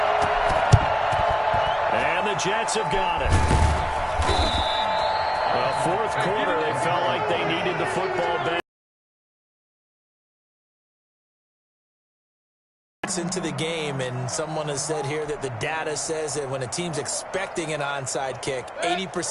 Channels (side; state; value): both; identical; correlation 1.00